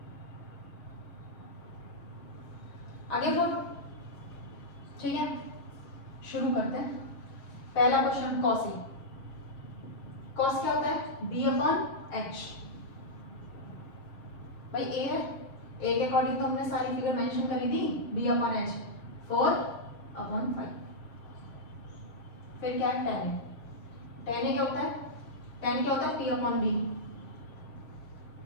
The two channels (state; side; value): late; right; 6.5 ms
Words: आगे 4, ठीक है। शुरू करते हैं, पहला क्वेश्चन कॉस, कॉस क्या होता है b अपॉन एच, भाई a है, a के अकॉर्डिंग तो हमने सारी फिगर मेंशन करी थी, b अपॉन एच 4 अपॉन 5। फिर क्या है tan, tan क्या होता है, tan क्या होता है p अपॉन b,